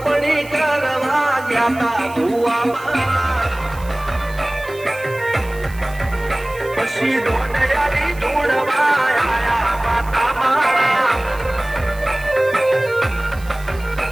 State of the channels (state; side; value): noise; right; hiss, 21 dB below the sound